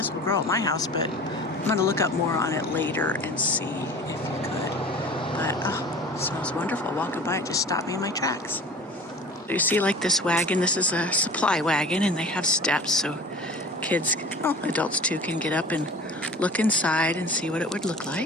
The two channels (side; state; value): both; normal; correlation 0.41